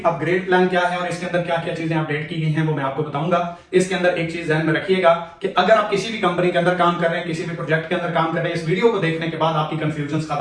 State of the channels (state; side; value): identical; both; correlation 1.00